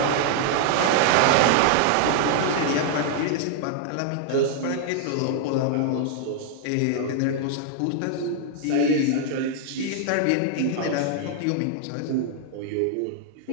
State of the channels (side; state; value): both; different; correlation 0.00